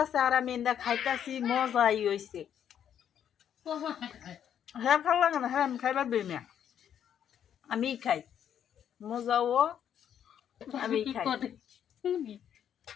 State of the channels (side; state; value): right; quieter; 9.3 dB